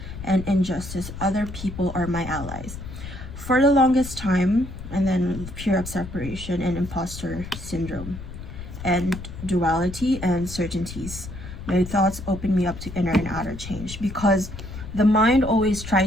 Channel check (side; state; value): left; noise; rumble, 11 dB below the sound